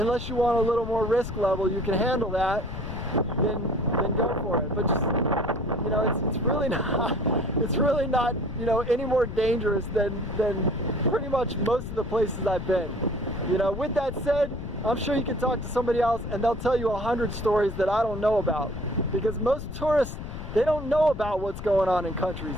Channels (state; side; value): noise; left; rumble, 8 dB below the sound